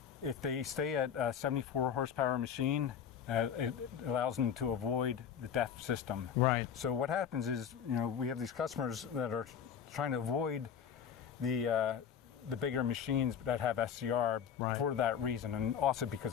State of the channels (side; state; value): right; quieter; 7.9 dB